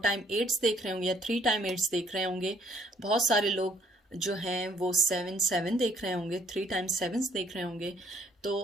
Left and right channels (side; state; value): both; normal; correlation 0.63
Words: टाइम 8s देख रहे होंगे या 3 टाइम 8s देख रहे होंगे। बहुत सारे लोग जो हैं वो 7 देख रहे होंगे, 3 टाइम 7s देख रहे होंगे। तो